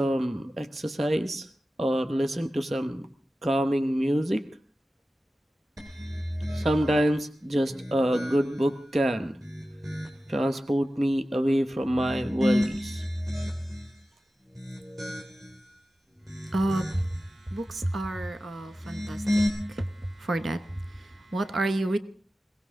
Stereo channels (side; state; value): both; normal; correlation 0.94